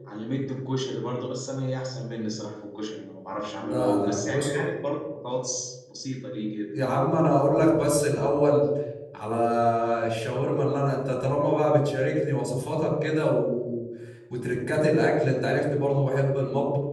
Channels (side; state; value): both; identical; correlation 1.00